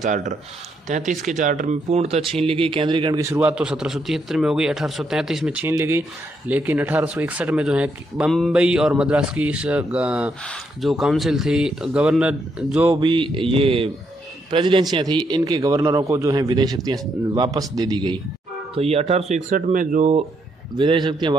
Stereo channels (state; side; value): normal; both; correlation 0.76